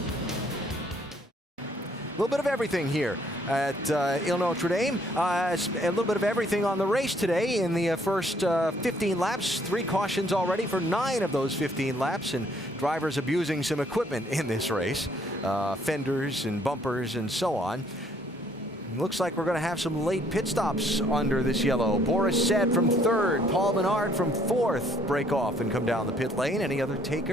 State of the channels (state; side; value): normal; both; correlation 0.64